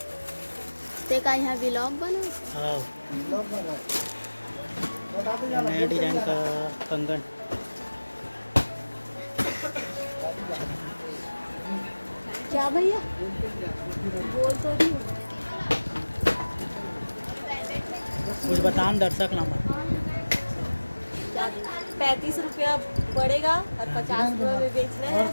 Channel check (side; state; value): both; inverted; correlation -1.00